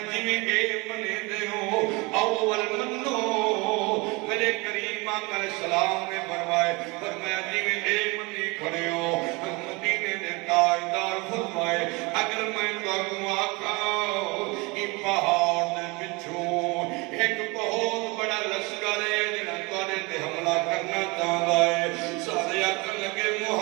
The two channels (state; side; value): quieter; left; 26.3 dB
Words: جیوے اے منے دے ہو اول منو میرے کریم آقا علیہ السلام نے فرمایا جیوے اے منی کھڑے ہو مدینے نے تاجدار فرمائے اگر میں تو آقا یہ پہاڑ دے پچھو ایک بہت بڑا لشکر ہے جنہاں توڑے تے حملہ کرنا چاہتا ہے سارے آقا لگے